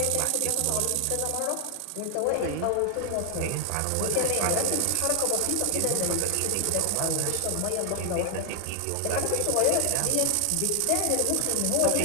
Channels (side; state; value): both; different; correlation 0.00